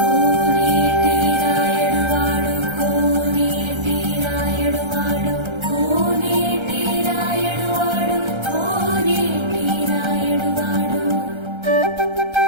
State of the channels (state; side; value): late; left; 1.3 ms